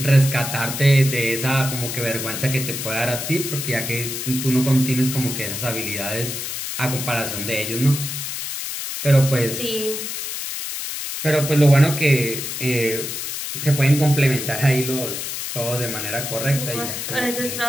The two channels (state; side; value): noise; left; hiss, 5 dB below the sound